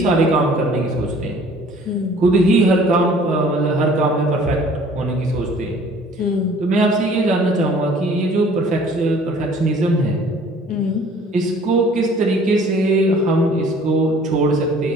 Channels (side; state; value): both; normal; correlation 0.53